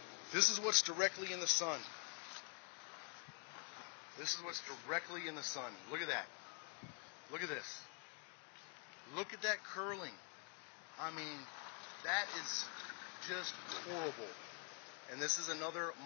This is what's directly in the sun. This is what's directly in the sun. Look at that. Look at this. Look at that curling. I mean, that is just horrible. And this is another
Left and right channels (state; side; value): quieter; right; 38.7 dB